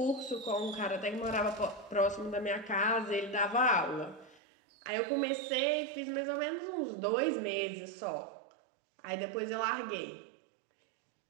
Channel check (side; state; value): left; drops out; at 4.4 s